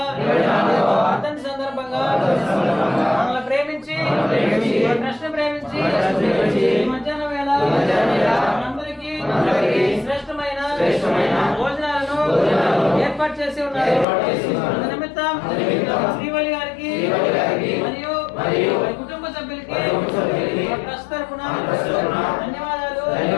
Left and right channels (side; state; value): right; drops out; at 14.1 s